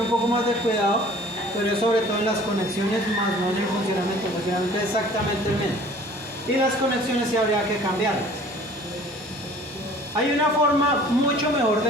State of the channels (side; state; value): both; normal; correlation 0.50